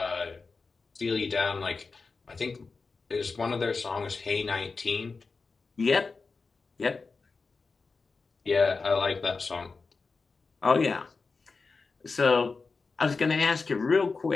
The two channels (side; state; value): right; quieter; 4.3 dB